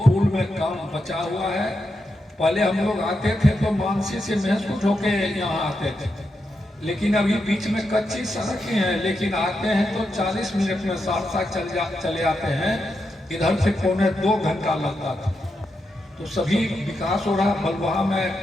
में काम बचा हुआ है। पहले हम लोग आते थे तो मानसी से महसूस होके यहाँ आते थे, लेकिन अभी बीच में कच्ची सड़कें हैं, लेकिन आते हैं तो 40 मिनट में साथ चले आते हैं। इधर से 1.25 घंटा लगता था। तो सभी विकास हो रहा। बलवाहा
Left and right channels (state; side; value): normal; both; correlation 0.86